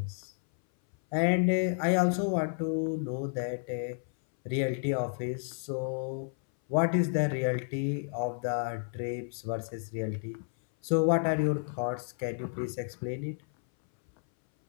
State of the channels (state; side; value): silent; right; 57 dB below the other